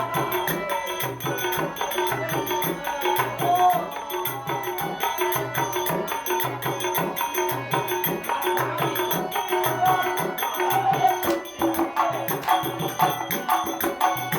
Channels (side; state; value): both; identical; correlation 1.00